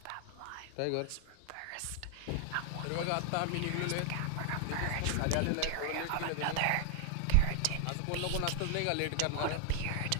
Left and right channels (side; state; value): both; different; correlation 0.00